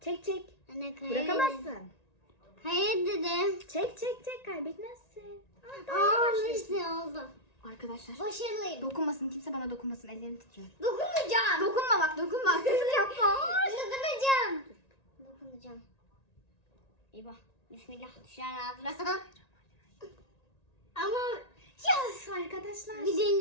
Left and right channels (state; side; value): late; right; 1.9 ms